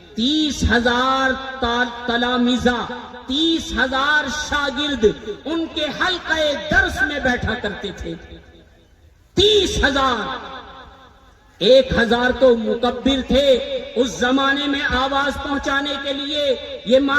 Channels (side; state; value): both; identical; correlation 1.00